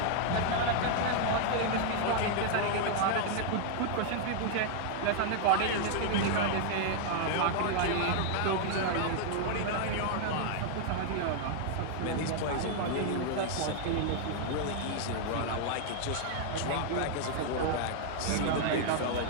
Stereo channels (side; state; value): both; different; correlation 0.00